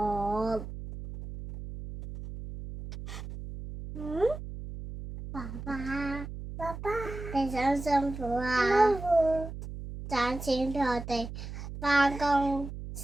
爸爸，你辛辛苦啊！賺錢俾我哋返工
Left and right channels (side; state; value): right; noise; hum, 10 dB below the sound